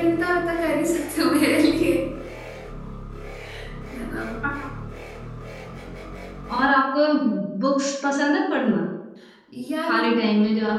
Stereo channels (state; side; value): identical; both; correlation 1.00